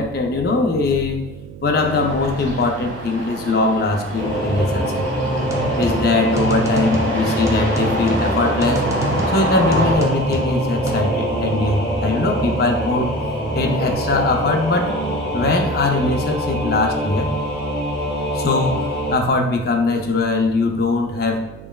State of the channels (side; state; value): right; noise; hum, 17 dB below the sound